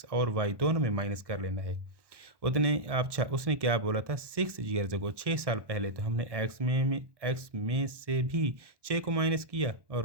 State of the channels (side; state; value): left; late; 1.1 ms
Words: और वाई दोनों में माइनस कर लेना है। उतने अच्छा उसने क्या बोला था 6 ईयर्स अगो 6 साल पहले, तो हमने एक्स में से भी 6 को माइनस किया और